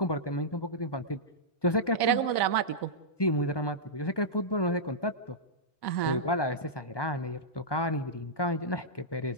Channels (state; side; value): late; right; 1.2 ms